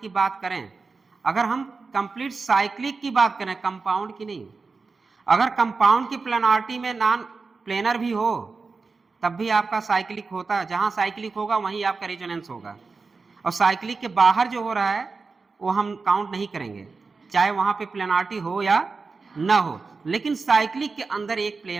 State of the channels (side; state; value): left; quieter; 4.3 dB